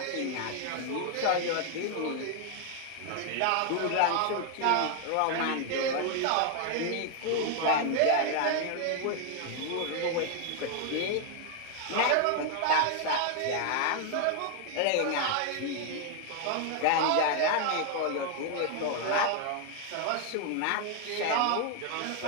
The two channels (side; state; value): both; different; correlation 0.00